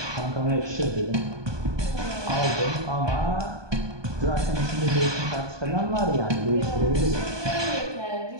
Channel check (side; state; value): left; late; 1.2 ms